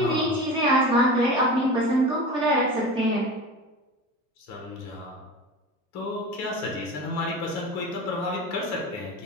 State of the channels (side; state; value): both; normal; correlation 0.31